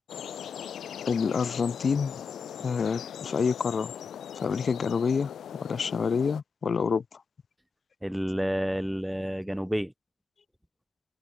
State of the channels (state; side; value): quieter; right; 4.3 dB